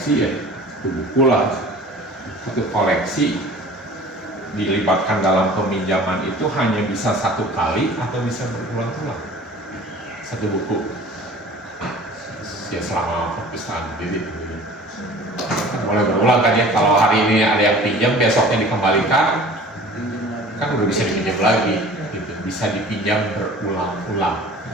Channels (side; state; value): both; normal; correlation 0.45